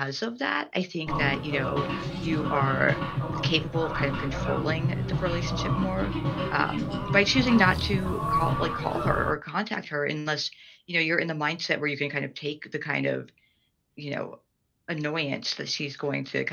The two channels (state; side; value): identical; both; correlation 1.00